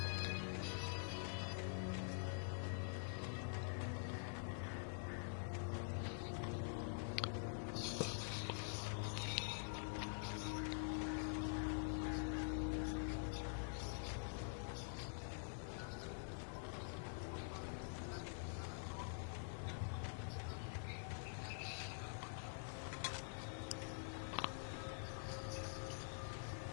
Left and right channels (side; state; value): right; silent; digital silence